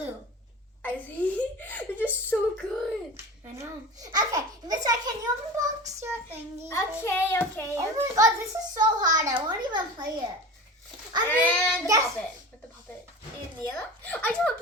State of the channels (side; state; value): both; normal; correlation 0.32